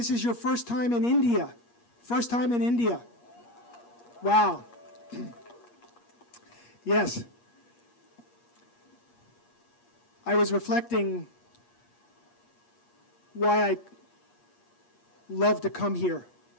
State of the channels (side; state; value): right; late; 8.4 ms